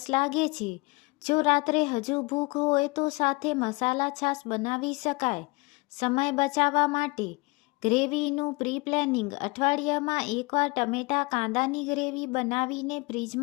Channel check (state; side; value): quieter; right; 26.0 dB